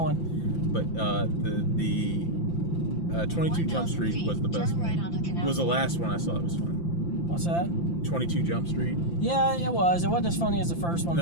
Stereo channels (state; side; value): late; right; 5.9 ms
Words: But the 22 Jump Street was the best Turn right one. onto Canal Was the last one I saw that was fun. What's that? 22 Jump Street. Yeah, it was. It wasn't as funny as the first one,